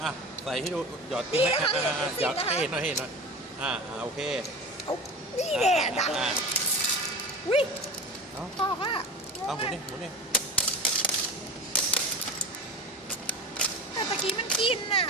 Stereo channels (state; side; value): normal; both; correlation 0.32